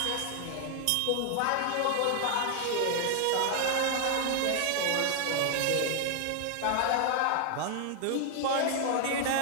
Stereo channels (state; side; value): different; both; correlation 0.00